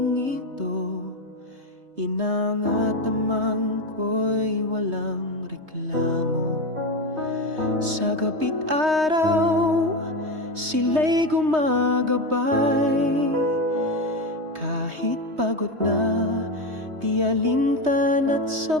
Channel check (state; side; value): late; left; 3.2 ms